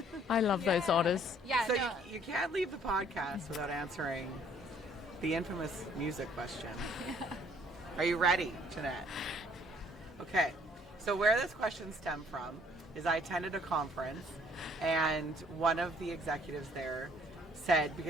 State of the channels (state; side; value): normal; both; correlation 0.60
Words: I love those otters. Yeah, So no. you can't leave the podcast without answering the infamous music question. Are you ready, Jeanette? Okay. So where this question stemmed from is I attended a conference, and one of the executives there said,